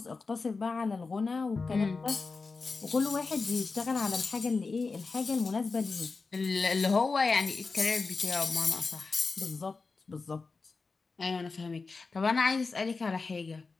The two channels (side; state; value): right; quieter; 4.2 dB